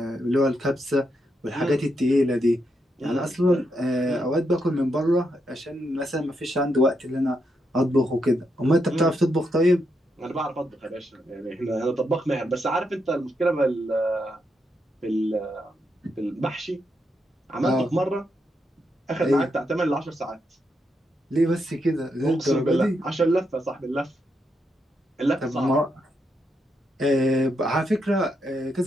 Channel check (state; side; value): normal; both; correlation 0.81